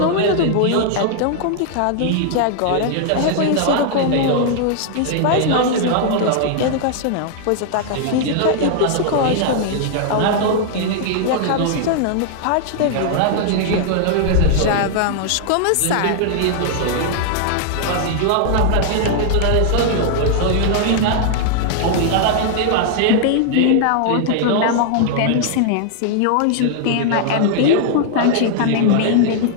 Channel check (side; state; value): both; different; correlation -0.01